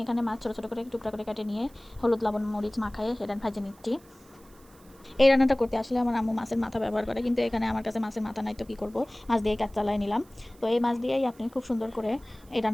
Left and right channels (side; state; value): right; noise; hiss, 28 dB below the sound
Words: এখানে মাছ ছোটো ছোটো করে টুকরা করে কেটে নিয়ে হলুদ লবণ মরিচ মাখায়ে সেটা ভেজে নিচ্ছি। এই রান্নাটা করতে আসলে আমার আম্মু মাছের মাথা ব্যবহার করে, কিন্তু এখানে আমার কাছে মাছের মাথা নাই, তো কী করবো, মাছ দিয়ে কাজ চালাই নিলাম। তো এই মাছ দিয়েই আপনি খুব সুন্দর করে এই